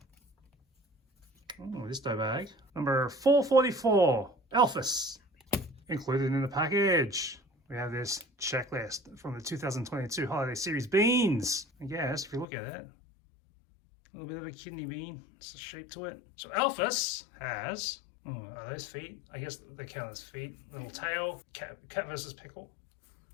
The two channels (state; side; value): drops out; right; at 12.5 s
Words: Oh, this dough bag. Number 444, Elfis. Included in the package, we have this checklist from the 2022 holiday series beans. I guess, if you look at it, a little bit of a kidney bean. It's a shape to it. So Elfis has, oh, are those feet? I guess they count as feet. Little tail, cat versus pickle.